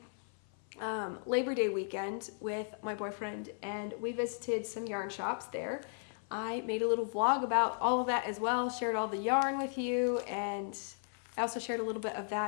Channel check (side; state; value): right; silent; 54 dB below the other